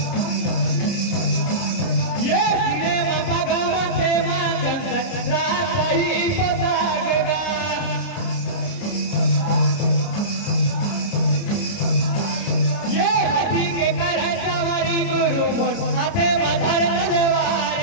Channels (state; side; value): late; right; 30 ms